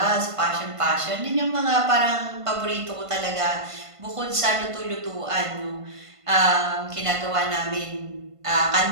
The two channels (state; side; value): late; left; 1.5 ms